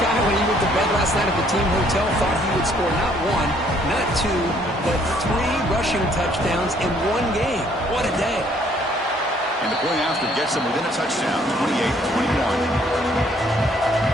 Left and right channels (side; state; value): both; normal; correlation 0.64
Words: guy, when he went to bed last night at the team hotel, thought he would score not 1, not 2, but 3 rushing touchdowns in one game? What a day. And the play after gets them within a touchdown, 28-21.